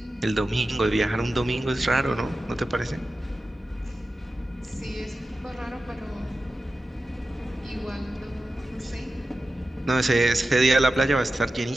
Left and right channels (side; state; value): both; normal; correlation 0.93